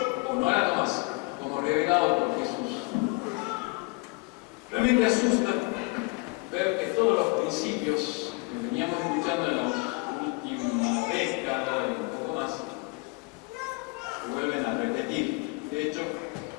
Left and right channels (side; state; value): right; quieter; 28.8 dB